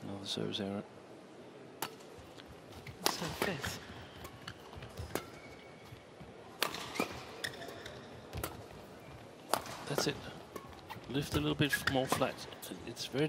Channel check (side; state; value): both; identical; correlation 1.00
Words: Another service error. So fifth. That's it. Lift a little bit more flat. It's very